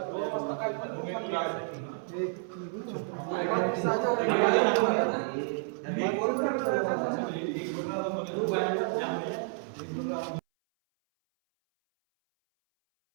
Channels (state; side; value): silent; left; 57 dB below the other